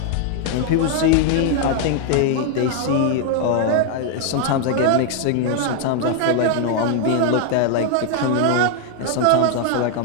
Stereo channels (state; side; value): different; both; correlation 0.00